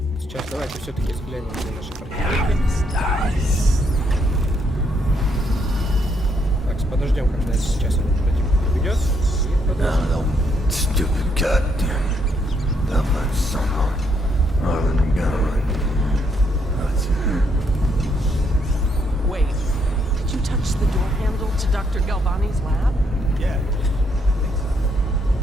Сейчас давайте все-таки взглянем на наши противники. Так, подождем, когда сейчас этот противник уйдет. И подождем. Stupid goddamn double son of a gun. Wait, did you touch the door handle to Dr. Galvani's lab? Yeah.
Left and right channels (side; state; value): both; normal; correlation 0.74